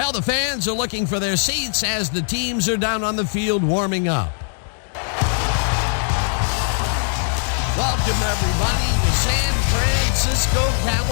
the fans are looking for their seats as the teams are down on the field warming up. Welcome, everybody, to San Francisco,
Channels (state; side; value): silent; right; digital silence